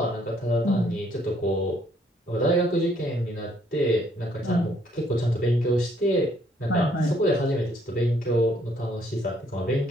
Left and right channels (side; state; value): both; normal; correlation 0.67